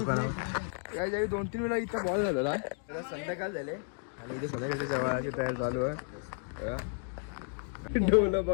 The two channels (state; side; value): silent; right; 56 dB below the other